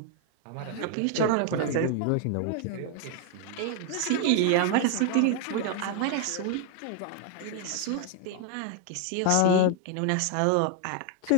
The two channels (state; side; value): different; both; correlation 0.00